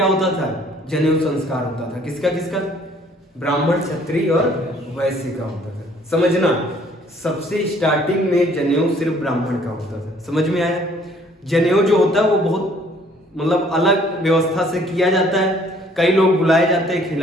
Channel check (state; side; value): normal; both; correlation 0.59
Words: होता था? जनेऊ संस्कार होता था। किसका किसका? ब्राह्मण, क्षत्रिय और वैश्य का होता था। समझना, सबसे स्टार्टिंग में जनेऊ सिर्फ ब्राह्मण का होता था। समझ में आया? जनेऊ जो होता है वो बहुत मतलब अलग व्यवस्था से किया जाता है। कई लोग बुलाए जाते हैं,